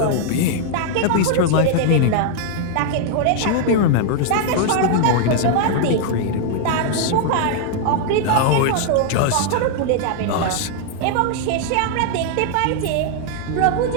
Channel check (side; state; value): both; different; correlation 0.00